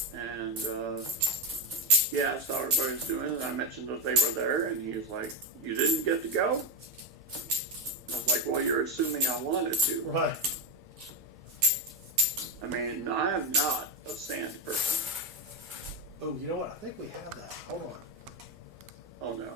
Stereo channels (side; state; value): both; normal; correlation 0.11